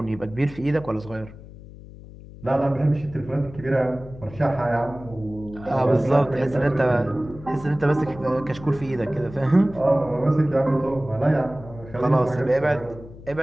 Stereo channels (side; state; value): left; noise; hum, 17 dB below the sound